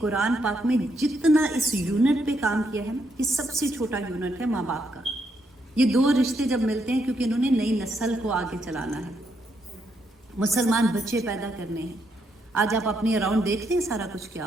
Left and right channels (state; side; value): normal; both; correlation 0.77